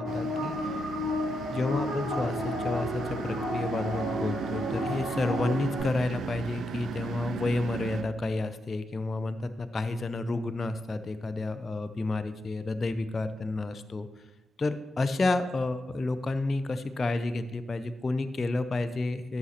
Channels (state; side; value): normal; both; correlation 0.86